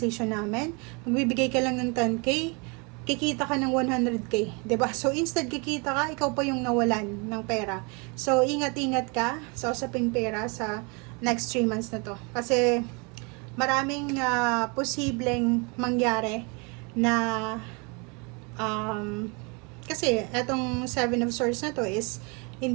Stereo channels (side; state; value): left; quieter; 31.4 dB